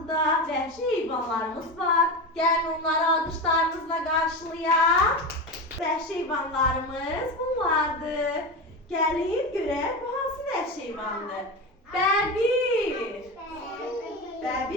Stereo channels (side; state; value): both; normal; correlation 0.22